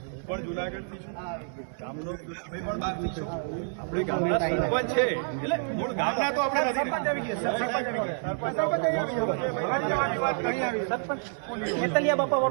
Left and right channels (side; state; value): left; silent; 59 dB below the other